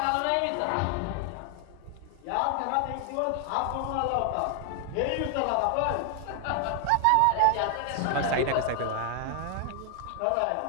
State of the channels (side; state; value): both; different; correlation 0.00